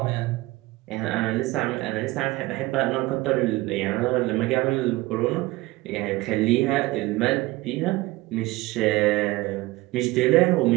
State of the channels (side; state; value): left; quieter; 20.1 dB